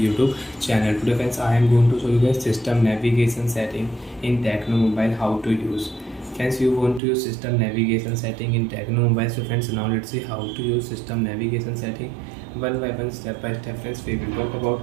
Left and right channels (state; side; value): drops out; left; at 7.0 s